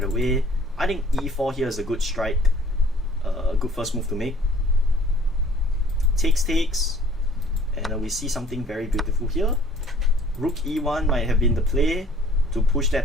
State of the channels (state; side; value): normal; both; correlation 0.55